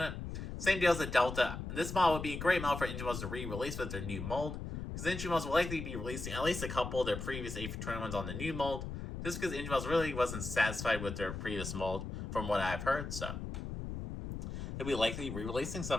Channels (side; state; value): left; noise; rumble, 6 dB below the sound